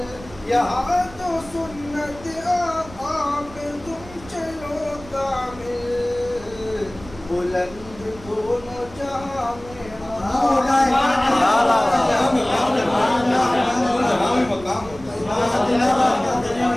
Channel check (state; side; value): noise; right; rumble, 18 dB below the sound